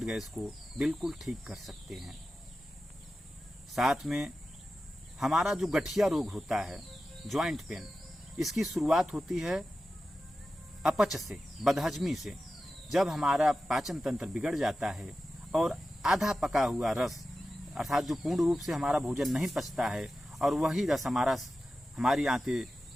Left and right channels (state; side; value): normal; both; correlation 0.93